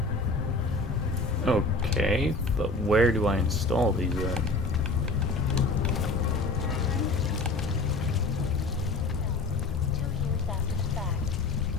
Okay, but where do I install these at?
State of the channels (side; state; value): right; quieter; 3.2 dB